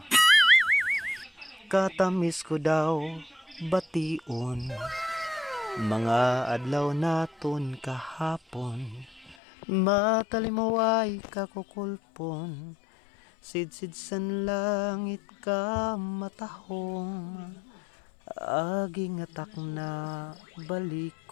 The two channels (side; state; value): right; drops out; at 9.3 s